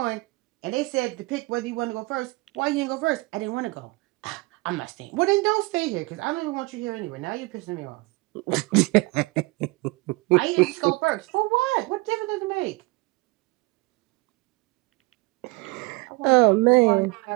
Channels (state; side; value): quieter; left; 24.6 dB